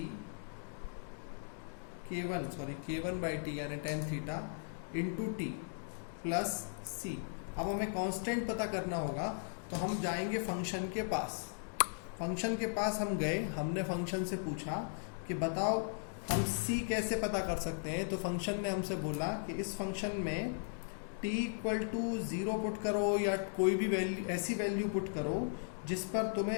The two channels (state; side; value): silent; right; digital silence